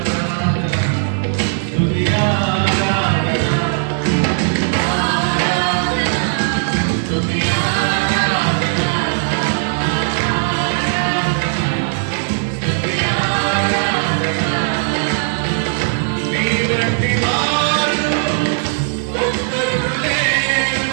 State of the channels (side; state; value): left; silent; digital silence